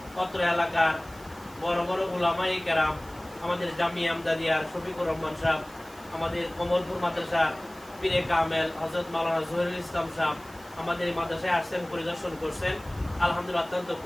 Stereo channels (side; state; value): right; noise; hiss, 23 dB below the sound